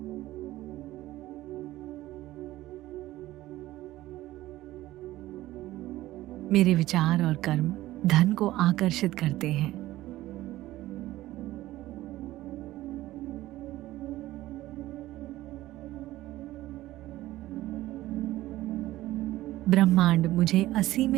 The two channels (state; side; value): quieter; left; 16.1 dB